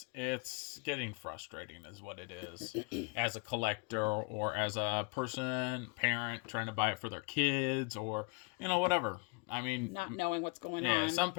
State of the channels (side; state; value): right; quieter; 32.8 dB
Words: getting frustrating, is what it is, as a collector or as a parent trying to buy it for their kids or whatever. I mean, not knowing what's going yeah, on. some